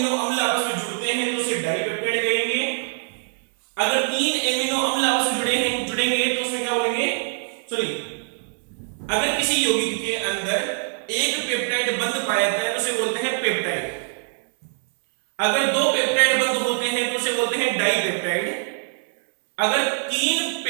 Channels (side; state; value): left; silent; digital silence